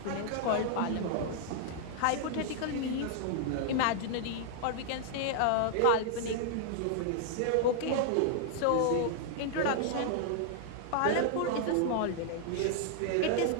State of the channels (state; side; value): different; both; correlation -0.01